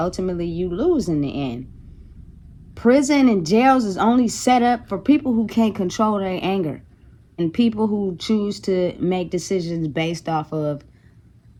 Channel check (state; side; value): identical; both; correlation 1.00